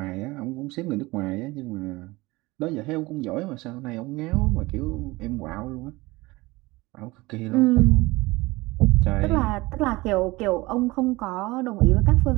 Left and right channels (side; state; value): left; quieter; 21.4 dB